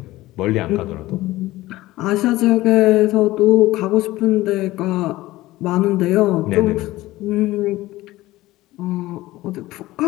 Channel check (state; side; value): quieter; right; 17.5 dB